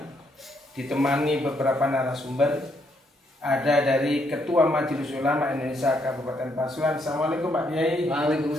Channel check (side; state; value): both; normal; correlation 0.74